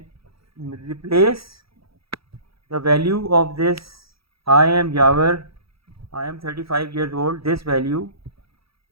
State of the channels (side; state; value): left; late; 0.76 ms